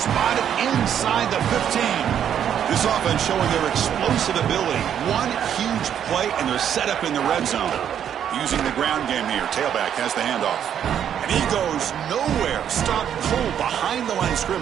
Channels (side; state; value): left; quieter; 9.2 dB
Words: inside the 15. This offense showing their explosive ability. One huge play, and they're set up in the red zone. Using the ground game here. Tailback has the handoff. And he goes nowhere. Stopped cold behind the line of